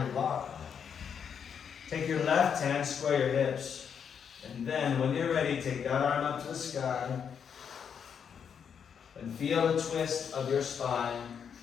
your block. Take your left hand, square your hips. And then when you're ready, take that arm up to the sky. And feel the twist of your spine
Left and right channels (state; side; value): quieter; right; 7.4 dB